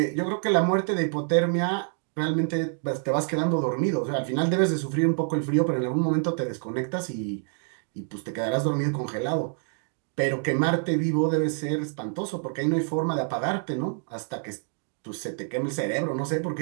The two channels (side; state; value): left; silent; 60 dB below the other